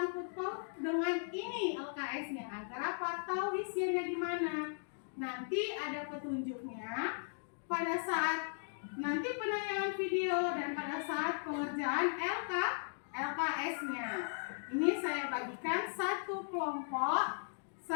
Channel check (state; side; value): silent; right; digital silence